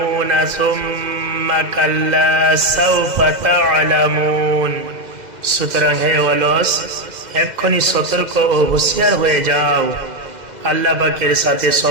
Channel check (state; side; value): late; left; 2.0 ms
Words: সুম্মা কাল্লা সাউফা তা'লামুন। সুতরাং হে অলস, এক্ষুনি সতর্ক ও হুঁশিয়ার হয়ে যাও। আল্লাহ পাকের সাথে